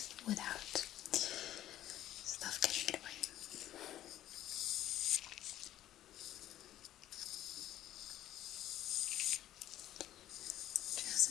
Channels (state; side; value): quieter; right; 13.1 dB